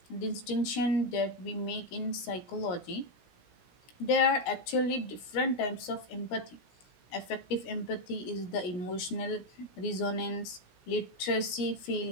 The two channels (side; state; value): right; late; 16 ms